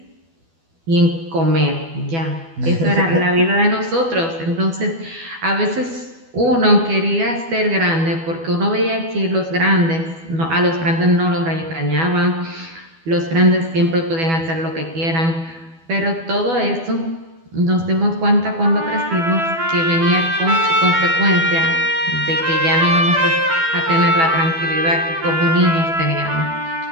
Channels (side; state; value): left; late; 12 ms